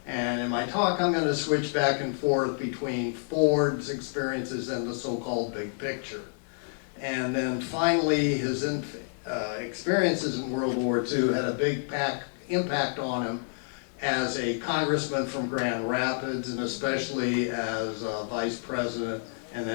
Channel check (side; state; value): right; silent; digital silence